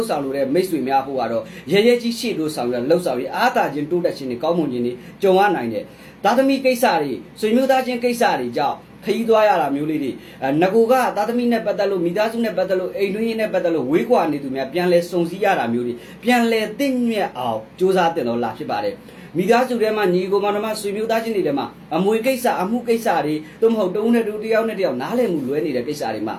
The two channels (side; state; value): both; identical; correlation 1.00